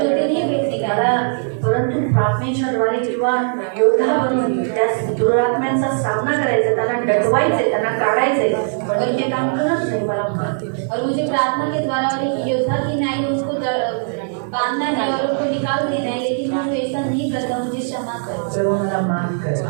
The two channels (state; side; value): silent; left; 66 dB below the other